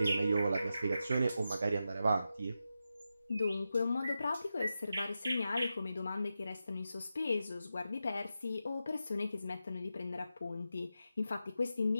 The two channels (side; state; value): both; inverted; correlation -0.89